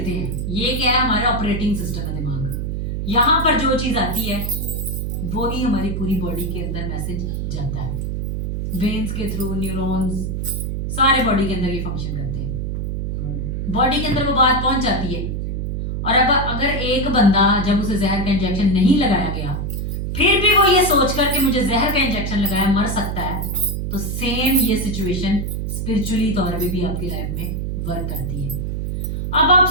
हैं, ये क्या है, हमारा ऑपरेटिंग सिस्टम है दिमाग। यहां पर जो चीज आती है वो ही हमारी पूरी बॉडी के अंदर मैसेज जाता है। वेन्स के थ्रू, न्यूरॉन्स, सारे बॉडी के अंदर ये फंक्शन करते हैं। बॉडी के अंदर वो बात पहुंच जाती है। और अब अगर एक बंदा जब उसे जहर का इंजेक्शन नहीं लगाया गया, फिर भी वो ये सोच कर कि मुझे जहर का इंजेक्शन लगाया मर सकता है, तो तो सेम ये सिचुएशन स्पिरिचुअली तौर पे भी आपकी लाइफ में वर्क करती है। अब आप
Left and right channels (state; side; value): noise; right; hum, 2 dB below the sound